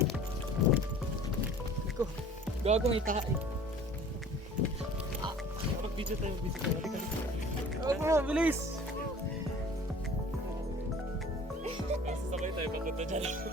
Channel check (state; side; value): normal; both; correlation 0.47